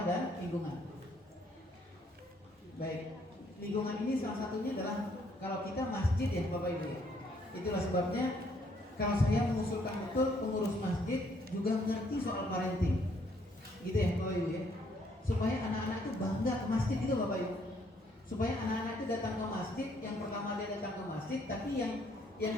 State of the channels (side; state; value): both; normal; correlation 0.68